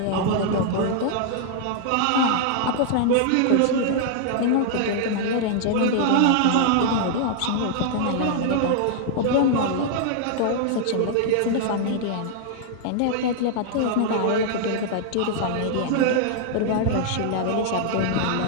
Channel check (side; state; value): both; different; correlation -0.01